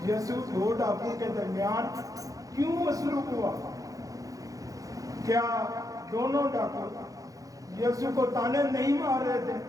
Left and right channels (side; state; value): left; late; 0.17 ms